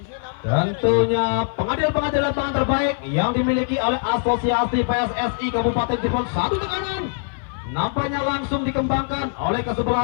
Tentunya pengadil-pengadil lapangan terbaik yang dimiliki oleh Asosiasi PSSI Kabupaten Cirebon. Satu tekanan nampaknya langsung dikembangkan oleh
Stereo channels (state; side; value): silent; right; 57 dB below the other